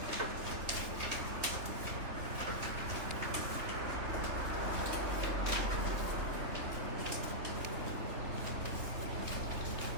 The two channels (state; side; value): late; left; 3.6 ms